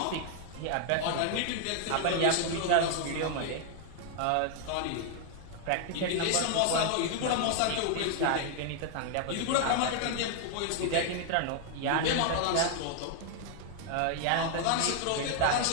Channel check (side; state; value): both; different; correlation 0.00